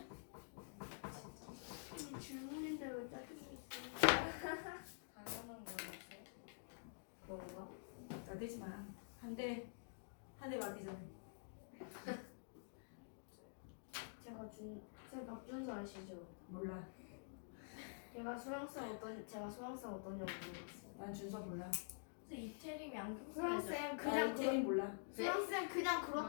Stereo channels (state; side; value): silent; right; digital silence